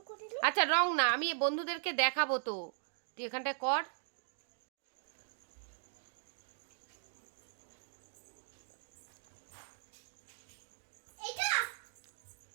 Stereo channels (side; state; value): left; silent; digital silence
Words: আচ্ছা রং না, আমি বন্ধুদেরকে দেখাবো তো, তুই এখানটায় কর।